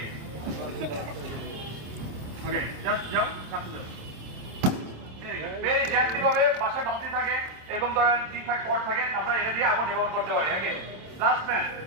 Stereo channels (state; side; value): late; left; 26 ms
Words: ওকে জাস্ট যাও কাছে যাও ভেরি জেন্টলি ভাবে বাসায় বালতি থাকে এরকম ধরনের ঠিকঠাক পট থাকে আমরা এটা দিয়ে আগুন নিবারণ করতে পারি ওকে লাস্ট ম্যান